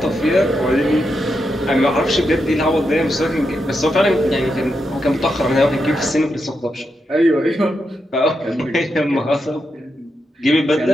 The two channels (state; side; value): normal; both; correlation 0.85